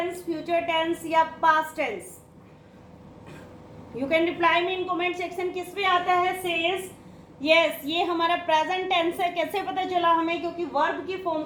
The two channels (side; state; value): both; identical; correlation 1.00